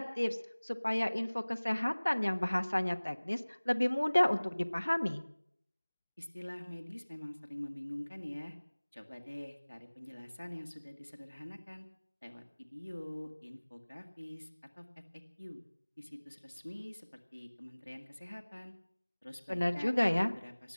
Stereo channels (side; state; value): both; inverted; correlation -1.00